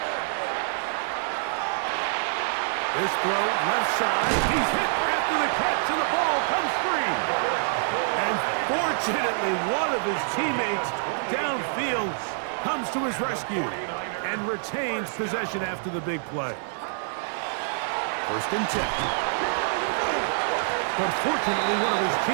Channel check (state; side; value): silent; left; 58 dB below the other